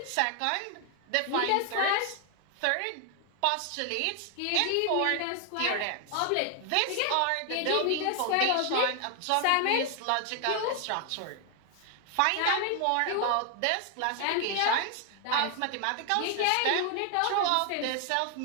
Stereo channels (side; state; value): both; different; correlation 0.00